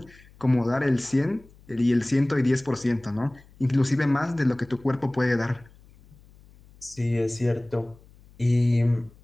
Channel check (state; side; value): noise; left; hum, 26 dB below the sound